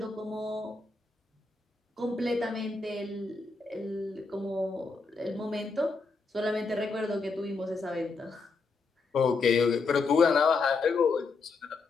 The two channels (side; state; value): right; quieter; 4.2 dB